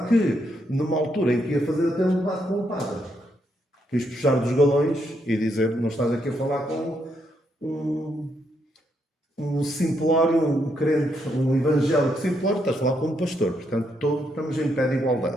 que numa altura em que ia fazer até um debate com o padre, quis puxar dos galões e dizer, não estás aqui a falar com um simplório, um crente, um evangélico simplório, estás a falar com um pastor. Portanto, estamos em pé de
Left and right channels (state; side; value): normal; both; correlation 0.77